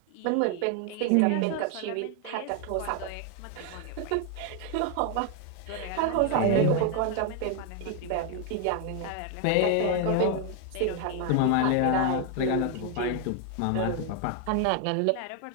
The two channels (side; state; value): both; different; correlation 0.01